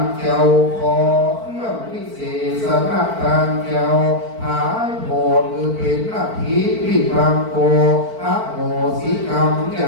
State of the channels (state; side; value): late; left; 4.5 ms